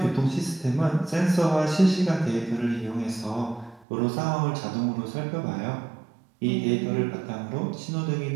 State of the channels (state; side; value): drops out; left; at 3.9 s